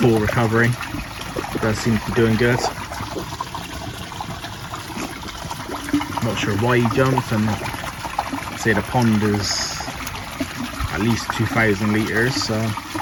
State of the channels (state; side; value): identical; both; correlation 1.00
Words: recovery. He does seem to be doing good. Not sure why he jumped, and I'd say the pond is at least 2,000 litres, so